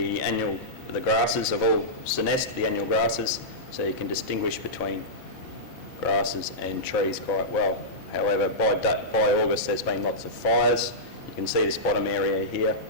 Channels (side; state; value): both; normal; correlation -0.14